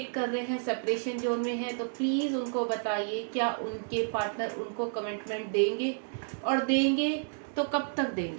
कर रहे हैं, सेपरेशन जोन में है, तो प्लीज़ उनको बताइए क्या उनके पार्टनर उनको कमिटमेंट देंगे, और देंगे तो कब तक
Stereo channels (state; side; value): silent; left; digital silence